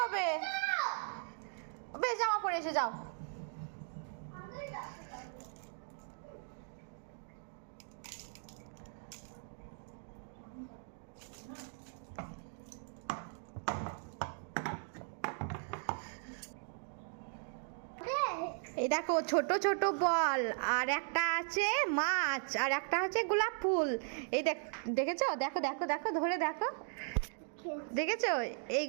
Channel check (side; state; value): left; silent; 53 dB below the other